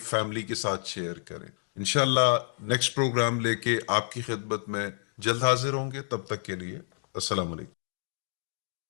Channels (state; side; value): silent; right; digital silence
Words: فیملی کے ساتھ شیئر کریں. انشاءاللہ نیکسٹ پروگرام لے کے آپ کی خدمت میں جلد حاضر ہوں گے. تب تک کے لیے السلام علیکم.